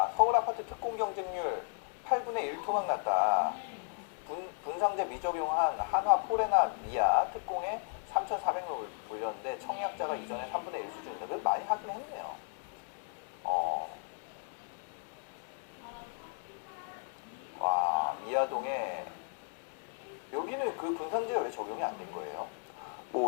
서울 아파트 특공 경쟁률 8분의 1 토막 났다. 분상제 미적용한 한화 포레나 미아 특공에 3,400명 물렸는데 청약자가 이전에 3분의 1 수준이다. 그래도 많이 하긴 했네요. 와, 미아동에 여기는 그 분상제가 왜 적용이 안 된 거예요?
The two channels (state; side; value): silent; right; 55 dB below the other